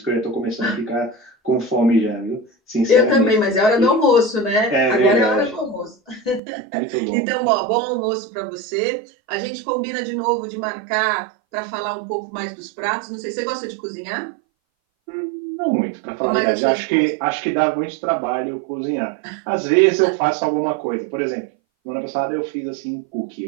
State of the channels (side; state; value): left; drops out; at 6.4 s